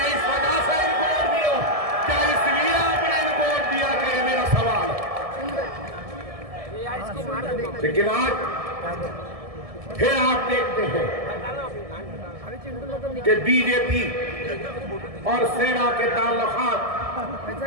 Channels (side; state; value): left; late; 1.7 ms